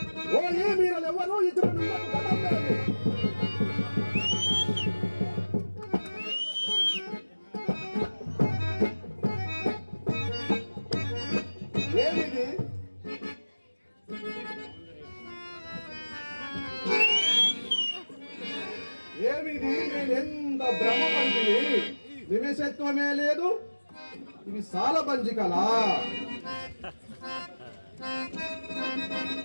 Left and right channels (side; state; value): both; inverted; correlation -1.00